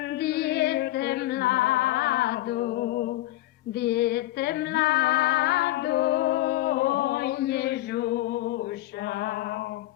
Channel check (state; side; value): quieter; right; 16.3 dB